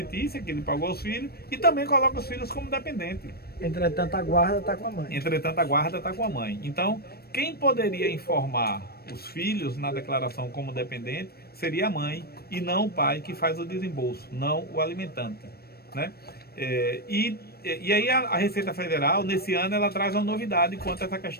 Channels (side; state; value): right; late; 0.46 ms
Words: que ele pagou aos filhos, e também coloca os filhos como dependente. Entretanto, a guarda está com a mãe. Entretanto, a guarda está com a mãe. Então, quem poderia informar os filhos na declaração como dependente seria a mãe e não o pai que faz o desembolso, não o alimentante, né? E aí a Receita Federal, nesse ano, ela traz uma novidade quanto a essa